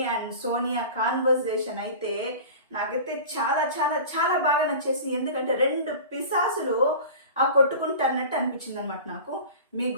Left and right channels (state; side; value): inverted; both; correlation -0.36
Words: అండ్ సోనియా కాన్వర్జేషన్ అయితే నాకైతే చాలా చాలా చాలా బాగా నచ్చేసి, ఎందుకంటే రెండు పిశాసులు కొట్టుకుంటున్నట్టు అనిపించింది అనమాట నాకు. మీకు